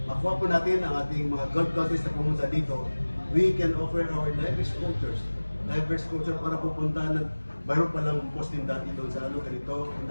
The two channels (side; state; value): both; inverted; correlation -1.00